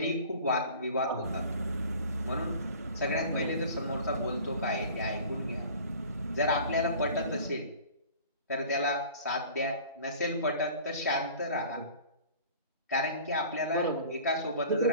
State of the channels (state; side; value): inverted; both; correlation -0.44